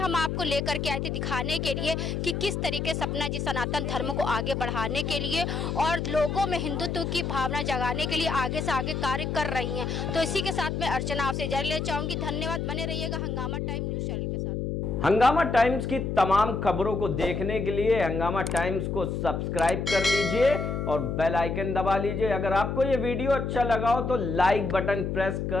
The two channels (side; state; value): left; noise; hum, 2 dB below the sound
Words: आपको लेकर के आए थे दिखाने के लिए कि किस तरीके सपना जी सनातन धर्म को आगे बढ़ाने के लिए और लोगों में हिंदुत्व की भावना जगाने के लिए आगे से आगे कार्य कर रही हैं। तो इसी के साथ मैं अर्चना आपसे इजाजत लेना चाहूंगी। धन्यवाद, बने रहिएगा हंगामा टाइम न्यूज चैनल के साथ। हंगामा टाइम्स की तमाम खबरों को देखने के लिए हंगामा टाइम्स को सब्सक्राइब कर लीजिए और बेल आइकन दबा लीजिए। अगर आपको ये वीडियो अच्छा लगा हो तो लाइक बटन प्रेस